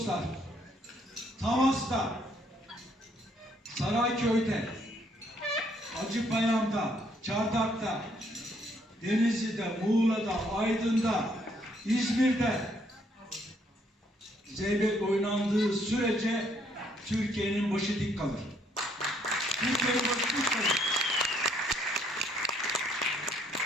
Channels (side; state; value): both; normal; correlation 0.68